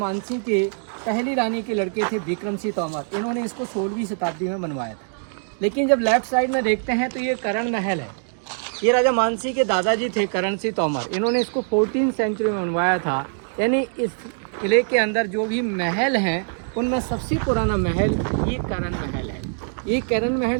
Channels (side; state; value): left; silent; digital silence